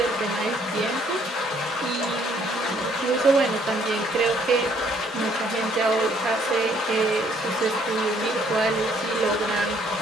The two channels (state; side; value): normal; both; correlation 0.64